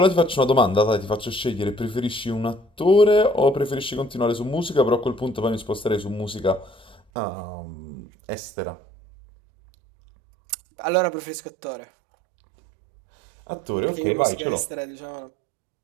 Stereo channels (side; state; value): left; drops out; at 7.0 s